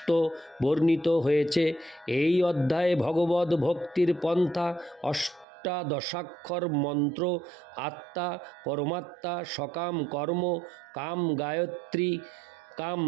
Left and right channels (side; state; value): left; drops out; at 5.5 s